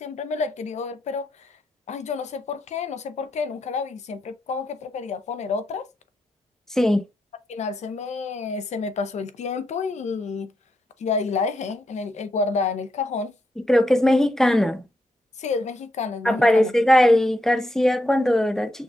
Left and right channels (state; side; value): normal; both; correlation 0.81